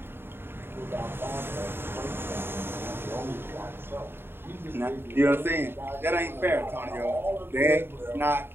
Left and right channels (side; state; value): left; late; 0.11 ms